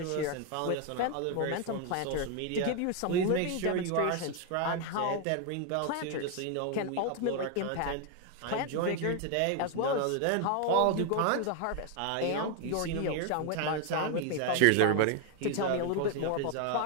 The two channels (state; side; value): different; both; correlation 0.01